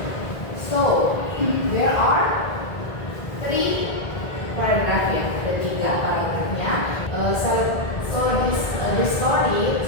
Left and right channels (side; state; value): right; late; 1.7 ms